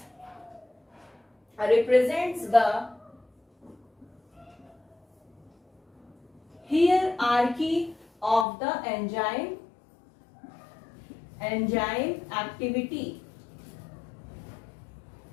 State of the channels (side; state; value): right; drops out; at 8.5 s